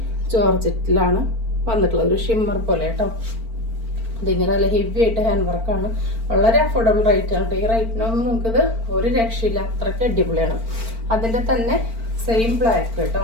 ജോർജറ്റിലാണ് വന്നിട്ടുള്ളത്. ഒരു ഷിമ്മർ പോലെ കേട്ടോ. ഇതിങ്ങനെ നല്ല ഹെവി ആയിട്ട് ഹാൻഡ് വർക്കാണ്. വളരെ അഫോർഡബിൾ റേറ്റ് ആണ്. ഈ റേറ്റിനൊന്നും നമുക്കിത് ഒരു രക്ഷയില്ല. അത്രയ്ക്ക് അടിപൊളിയാണ്. അതിൻ്റെ തന്നെ സെയിം ബ്ലാക്ക് കേട്ടോ.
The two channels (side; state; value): left; late; 4.4 ms